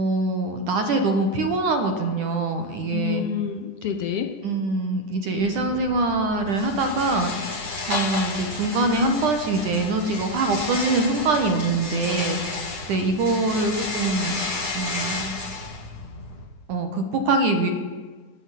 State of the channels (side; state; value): left; late; 10 ms